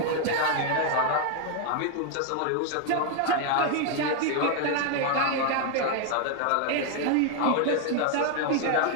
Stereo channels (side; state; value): both; different; correlation 0.00